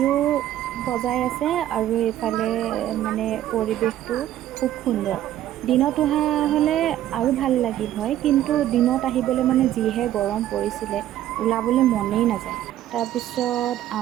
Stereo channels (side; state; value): left; quieter; 12.6 dB